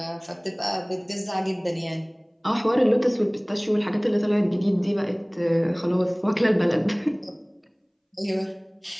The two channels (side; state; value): both; identical; correlation 1.00